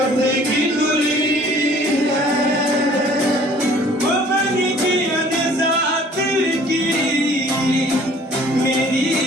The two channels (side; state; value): both; normal; correlation 0.53